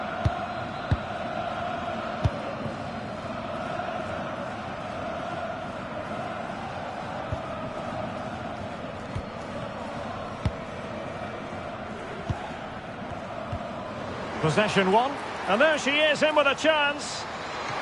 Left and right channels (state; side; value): identical; both; correlation 1.00